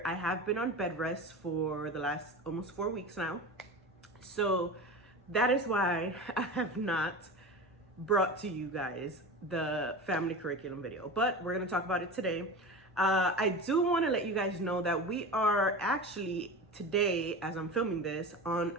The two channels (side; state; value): both; normal; correlation 0.28